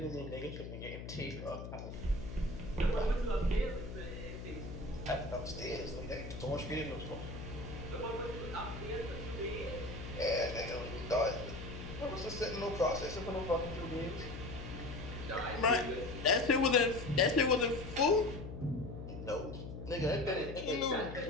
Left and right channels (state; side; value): noise; left; hum, 9 dB below the sound